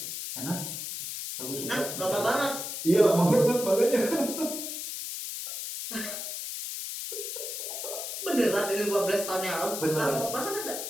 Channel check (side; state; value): left; noise; hiss, 6 dB below the sound